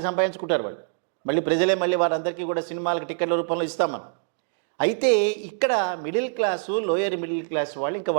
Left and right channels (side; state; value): left; silent; digital silence